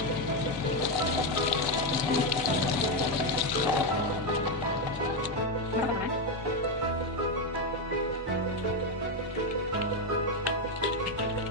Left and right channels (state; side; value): normal; both; correlation 0.07